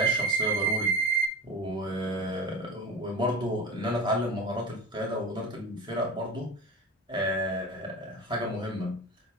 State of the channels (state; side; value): normal; both; correlation 0.30